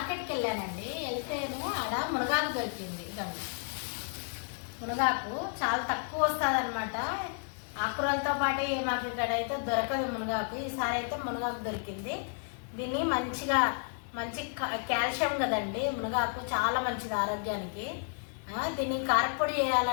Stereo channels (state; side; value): silent; right; 56 dB below the other